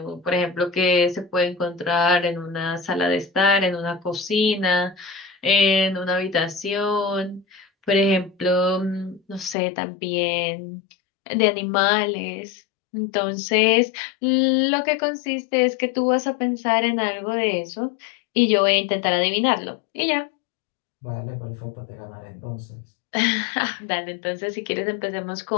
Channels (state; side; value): drops out; right; at 9.6 s